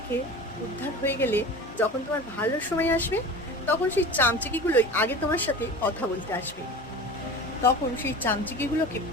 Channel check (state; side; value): normal; both; correlation 0.34